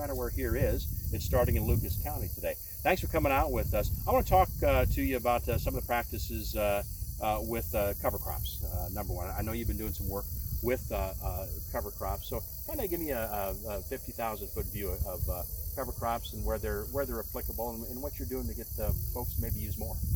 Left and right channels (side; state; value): both; identical; correlation 1.00